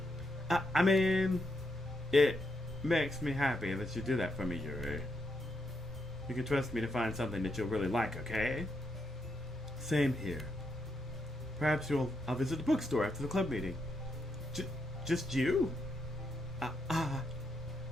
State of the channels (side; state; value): both; normal; correlation 0.81